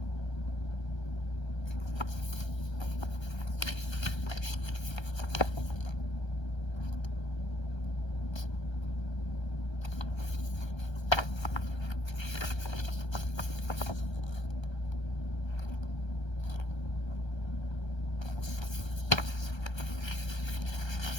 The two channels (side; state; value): right; late; 1.3 ms